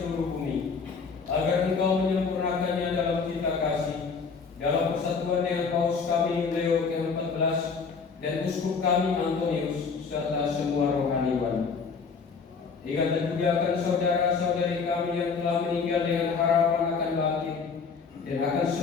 bumi, agar Engkau menyempurnakannya dalam cita kasih, dalam persatuan dengan Paus kami Leo ke-14 dan Uskup kami Antonius serta semua rohaniwan. Ingatlah juga akan saudara-saudari kami yang telah meninggal dengan harapan akan bangkit, dan akan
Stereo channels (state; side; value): quieter; right; 5.3 dB